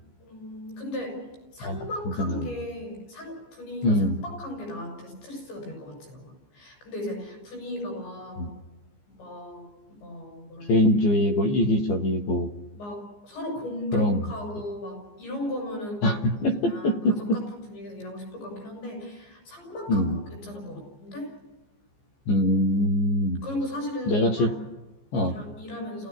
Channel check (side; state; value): right; late; 15 ms